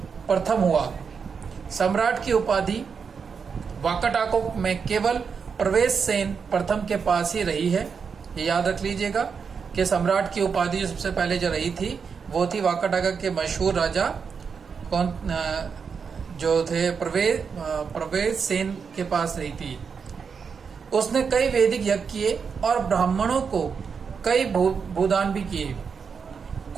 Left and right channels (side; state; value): left; quieter; 6.0 dB